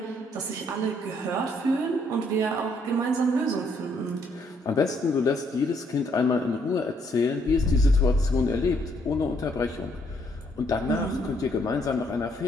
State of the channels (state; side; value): normal; both; correlation 0.69